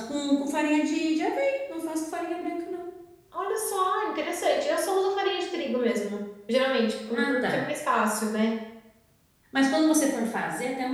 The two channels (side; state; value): both; identical; correlation 1.00